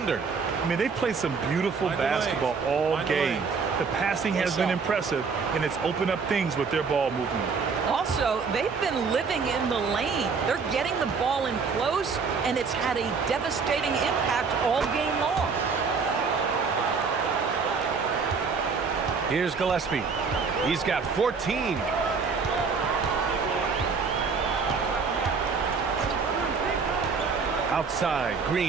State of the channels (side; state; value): left; quieter; 5.2 dB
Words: I mean, they played some beautiful basketball all game. The passing has been impressive, and it's opened up things with their ball movement. Also, they've been living in the lane. They're getting the ball in close, and it's had a devastating impact all game long. Here's Gillespie. He's got 14. Outside,